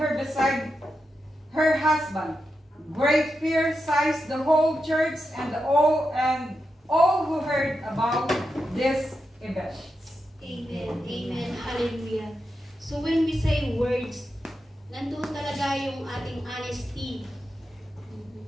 her beside her husband. Great fear seized the whole church and all who heard about this event. Amen. Amen. Hallelujah. So when we say words, nandun talaga yung ating honesty.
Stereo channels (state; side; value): normal; both; correlation 0.88